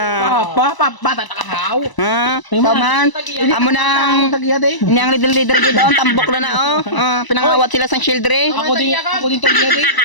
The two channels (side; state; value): right; late; 1.0 ms